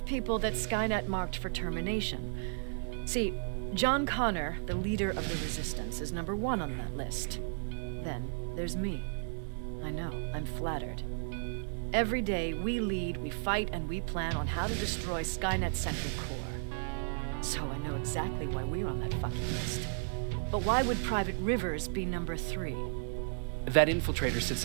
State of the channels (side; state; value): left; silent; 55 dB below the other